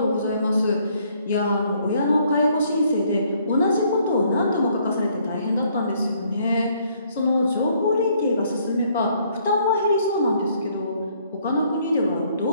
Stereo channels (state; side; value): inverted; both; correlation -0.66